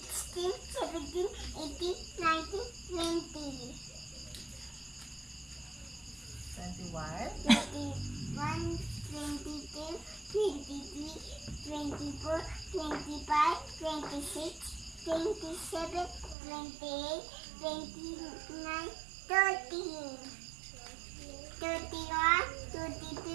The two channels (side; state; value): left; drops out; at 16.4 s